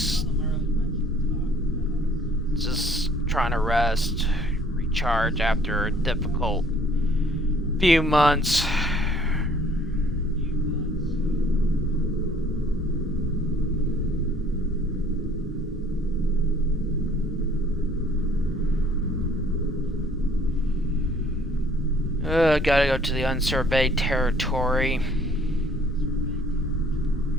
trying to rest, recharge after a difficult few months. Gotta go to the unsurveyed territory.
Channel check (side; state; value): both; normal; correlation 0.58